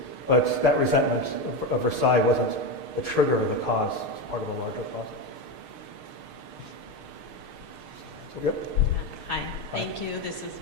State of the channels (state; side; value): late; right; 6.6 ms